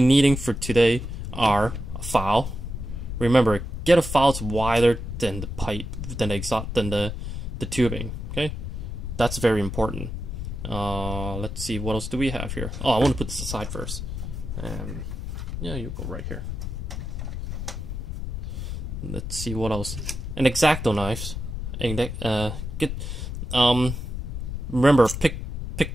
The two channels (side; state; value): left; noise; rumble, 5 dB below the sound